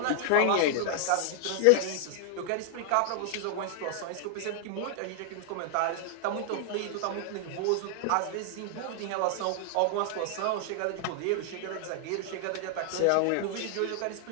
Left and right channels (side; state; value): both; different; correlation 0.00